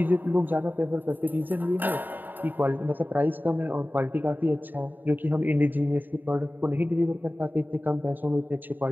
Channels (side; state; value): left; late; 0.089 ms